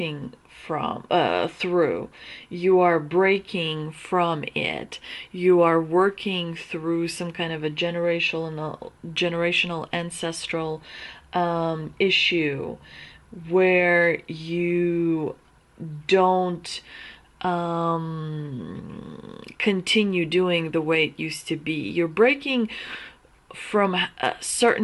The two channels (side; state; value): both; identical; correlation 1.00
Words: through. You are breaking from it. You are working through some kind of a generational ancestral issue where you don't continue doing the way it used to be. You're breaking from